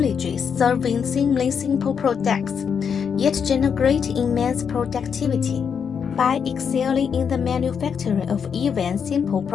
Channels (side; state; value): right; quieter; 6.9 dB